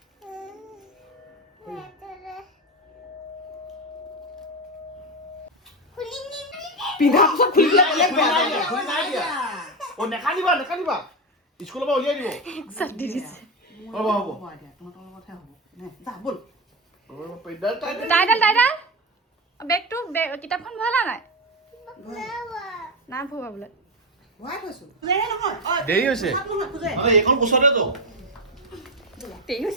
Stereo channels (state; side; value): normal; both; correlation 0.14